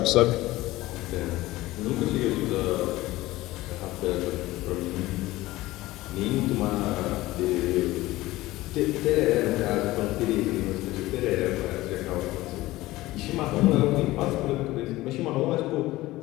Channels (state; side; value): quieter; right; 17.9 dB